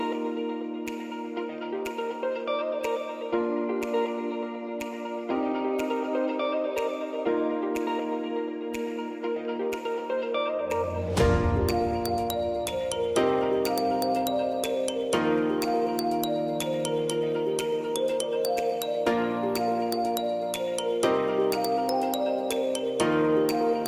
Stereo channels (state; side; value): identical; both; correlation 1.00